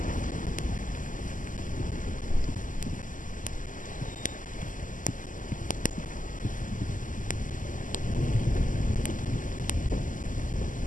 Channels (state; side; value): late; right; 0.38 ms